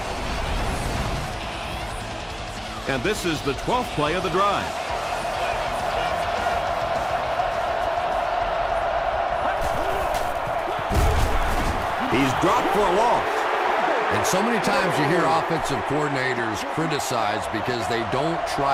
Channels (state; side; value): identical; both; correlation 1.00